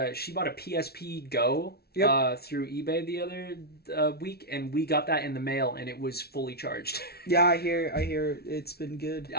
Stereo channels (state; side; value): late; right; 0.45 ms